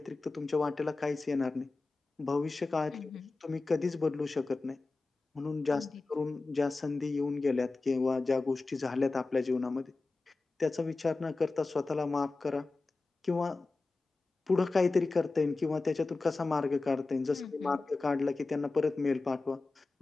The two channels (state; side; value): quieter; right; 3.6 dB